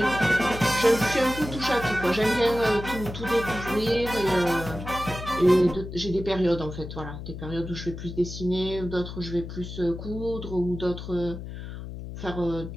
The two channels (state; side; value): noise; left; hum, 9 dB below the sound